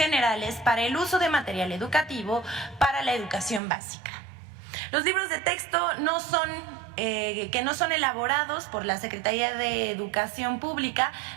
para el uso de material educativo para la educación básica. Los libros de texto que no son elaborados por la Secretaría de Educación Pública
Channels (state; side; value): drops out; left; at 3.6 s